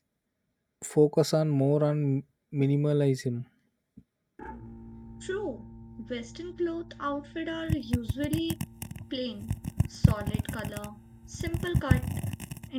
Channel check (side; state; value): both; identical; correlation 1.00